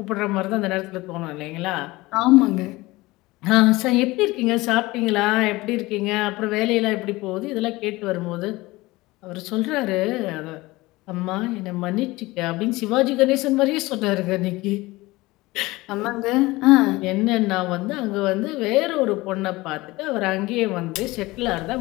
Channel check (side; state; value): right; quieter; 20.5 dB